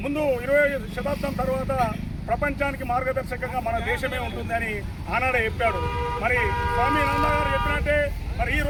ముందు 20వ శతాబ్దం తర్వాత ప్రపంచానికి మార్గదర్శకంగా మన దేశమే ఉంటుందని ఆనాడే చెప్పాడు. మరి స్వామి నంద గారు చెప్పినట్టే మరి ఈ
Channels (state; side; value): identical; both; correlation 1.00